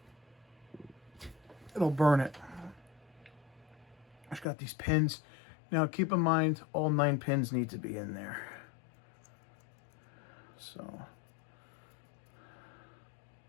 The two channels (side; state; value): right; drops out; at 4.5 s